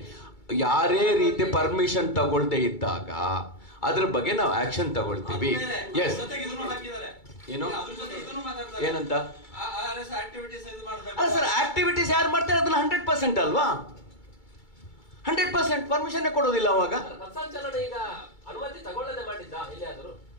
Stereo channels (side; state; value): right; late; 2.3 ms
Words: ಯಾರೇ ರೀತಿ ಪರ್ಮಿಷನ್ ತಗೊಳ್ದೇ ಇದ್ದಾಗ ಅದ್ರ ಬಗ್ಗೆ ನಾವು ಆಕ್ಷನ್ ತಗೊಳ್ತೀವಿ. ಎಸ್. ಏನು ಏನಂತ? ಅಲ್ಲ ಸರ್, ಆಕ್ಟಿವಿಟೀಸ್ ಯಾರು ಮಾಡ್ತಾರೆ ಅದನ್ನ 100% ಅಲ್ವಾ? 100% ಪರ್ಮಿಷನ್ ಕೊಡೋದಿಲ್ಲ ಅವಾಗ.